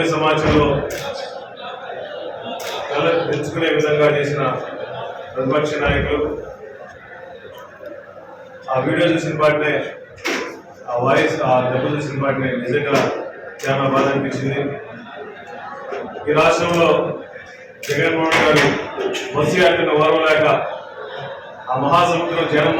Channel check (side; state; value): both; identical; correlation 1.00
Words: సమాజంలో తెచ్చుకునే విధంగా చేసిన ప్రతిపక్ష నాయకులు ఆ వీడియో చూసిన వాటినే, ఆ వాయిస్, ఆ దెబ్బ చూసిన వాటిని నిజంగా చాలా బాధ అనిపించింది. ఈ రాష్ట్రంలో జగన్మోహన్ గారు బస్సు యాత్రను ఓర్వలేక ఆ మహాసముద్రం